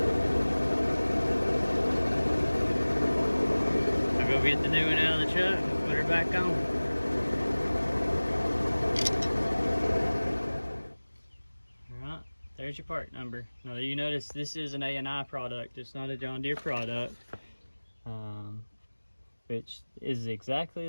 I'll go get the new one out of the truck and put her back on. Alright, there's your part number. Now you notice this is an A&I product, it's not a John Deere product. Which is exactly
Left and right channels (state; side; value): inverted; both; correlation -1.00